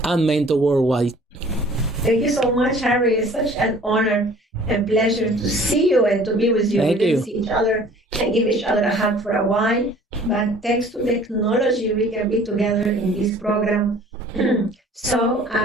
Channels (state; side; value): normal; both; correlation 0.51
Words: and mentor worldwide? Thank you so much, Harry. It's such an honor and pleasure to see you and to be with you. Thank we you. didn't see each other and give each other a hug for a while, but thanks to technology, we can be together in this program. So